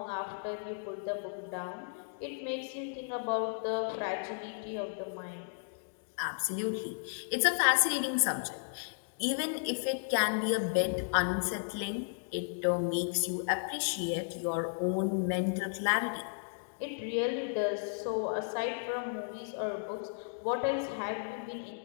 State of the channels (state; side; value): silent; right; digital silence